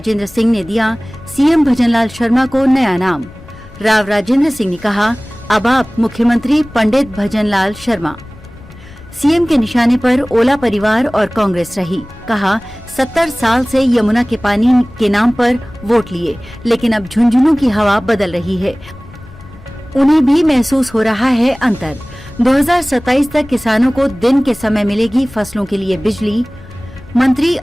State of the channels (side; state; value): left; noise; rumble, 20 dB below the sound